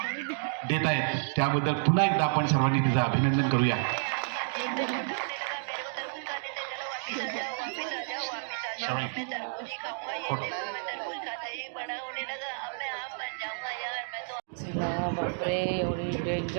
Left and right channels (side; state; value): left; silent; digital silence